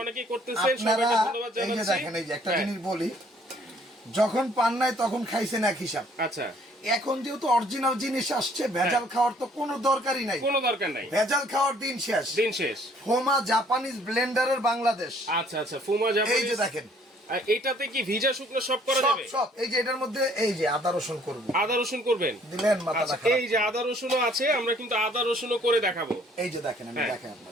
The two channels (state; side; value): normal; both; correlation 0.60